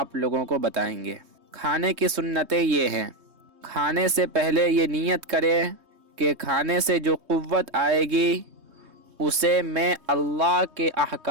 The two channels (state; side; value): late; left; 3.2 ms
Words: لوگوں کو بتائیں گے۔ کھانے کی سنتیں یہ ہیں: کھانے سے پہلے یہ نیت کرے کہ کھانے سے جو قوت آئے گی اسے میں اللہ کے